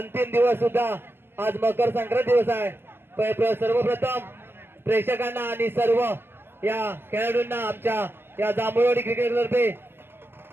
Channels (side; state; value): left; late; 0.10 ms